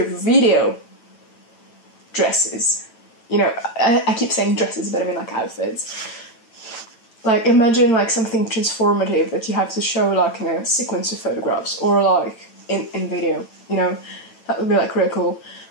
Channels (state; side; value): late; right; 9.0 ms